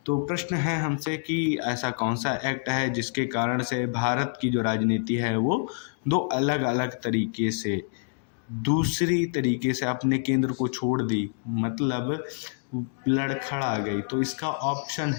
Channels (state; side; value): silent; right; digital silence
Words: तो प्रश्न है हमसे कि ऐसा कौन सा एक्ट है जिसके कारण से भारत की जो राजनीति है वो दो अलग अलग तरीके से दूसरी तरीके से अपने केंद्र को छोड़ दी, मतलब लड़खड़ा गई। तो इसका ऑप्शन